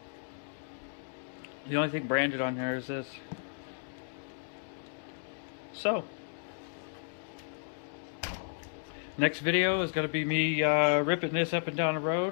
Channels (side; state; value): right; silent; digital silence